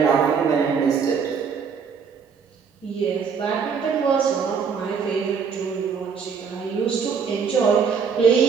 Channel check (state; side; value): quieter; left; 6.1 dB